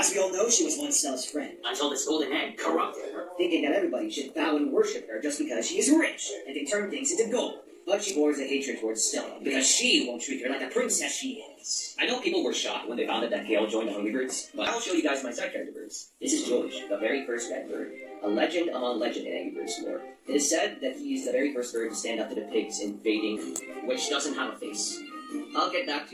we all know, she was once Stella's friend, until this golden egg corrupted her, thinking that everybody should bow and worship her just because she is rich and can turn things into gold. But she bores a hatred towards Stella, because she won't treat her like the princess she is. I know people were shocked when they found out that Gale joined the Hungry Birds, but I'll show you guys my side character birds. This is George, the very first red bird, a legend among legend in Angry Birds lore. It is said that he is the very first bird to stand up to the pigs invading, which doesn't have a face. I'll get back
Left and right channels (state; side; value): identical; both; correlation 1.00